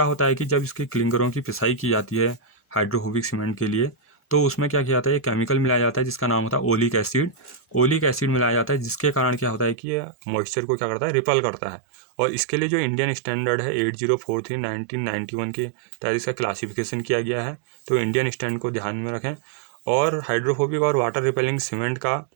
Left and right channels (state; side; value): drops out; left; at 9.8 s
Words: होता है कि जब इसके क्लिंकरों की पिसाई की जाती है हाइड्रोफोबिक सीमेंट के लिए, तो उसमें क्या किया जाता है, ये केमिकल मिलाया जाता है जिसका नाम होता है ओलिक एसिड। ओलिक एसिड मिलाया जाता है, जिसके कारण क्या होता है कि ये मॉइस्चर को क्या करता है, रिपेल करता है। और इसके लिए जो इंडियन स्टैंडर्ड है 8043 1991 के तहत इसका क्लासिफिकेशन किया गया है। तो इंडियन स्टैंड को ध्यान में रखें। और हाइड्रोफोबिक और वाटर रिपेलिंग सीमेंट